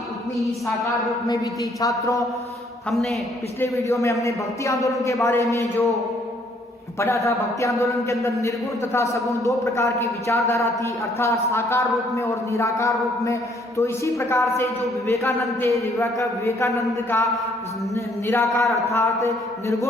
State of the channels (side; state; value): both; normal; correlation 0.65